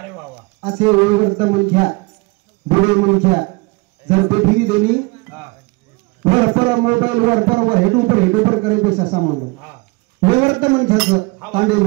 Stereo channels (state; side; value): quieter; left; 26.7 dB